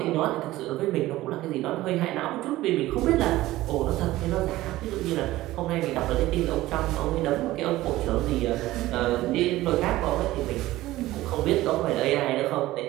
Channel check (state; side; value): quieter; left; 16.7 dB